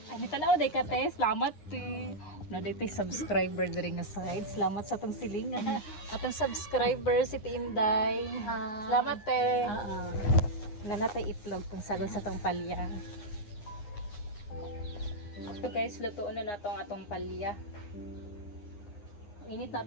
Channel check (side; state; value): right; late; 9.7 ms